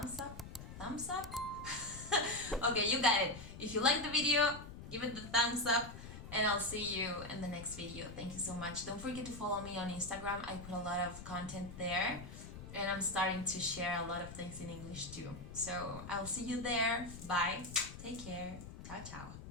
up? Thumbs up? Okay, you got it. If you like the video, give it the thumbs up, and I'll see you in the next video. Thank you so much. Don't forget to follow me on Instagram. I put a lot of content there, and I'm starting to share a lot of things in English too. So I'll see you there. Bye. Take care. Ciao, ciao.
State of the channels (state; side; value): noise; left; rumble, 12 dB below the sound